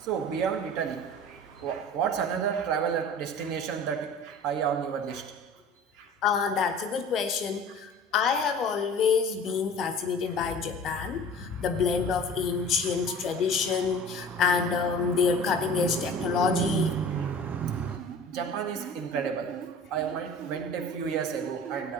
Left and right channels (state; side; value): normal; both; correlation 0.41